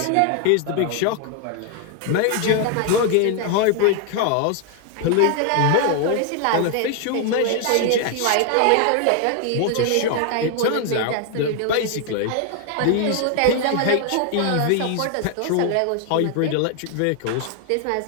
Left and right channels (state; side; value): different; both; correlation 0.00